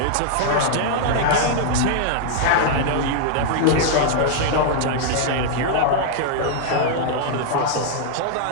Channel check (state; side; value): different; both; correlation 0.00